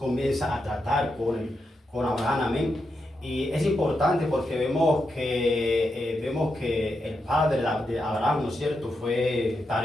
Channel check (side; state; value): both; normal; correlation 0.85